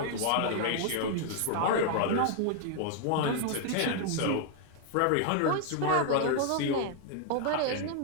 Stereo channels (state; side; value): different; both; correlation 0.00